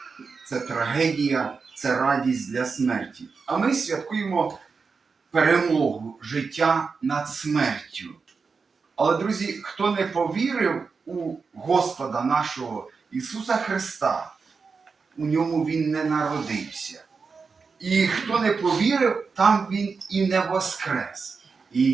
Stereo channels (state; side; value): quieter; left; 5.0 dB